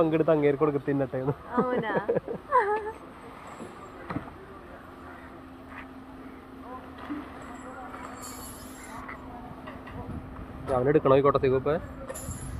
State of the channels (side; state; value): both; identical; correlation 1.00